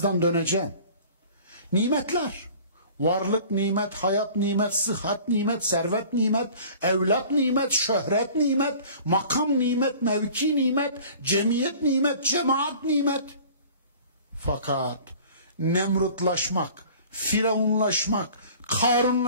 döneceğim. Nimetler. Varlık nimet, hayat nimet, sıhhat nimet, servet nimet, evlat nimet, şöhret nimet, makam nimet, mevki nimet, cemiyet nimet, cemaat nimet. Fakat Nemrutlaşmak, Firavunlaşmak,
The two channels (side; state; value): both; inverted; correlation -0.46